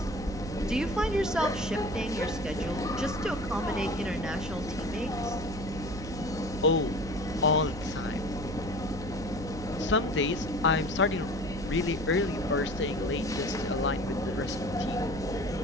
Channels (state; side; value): noise; right; hum, 10 dB below the sound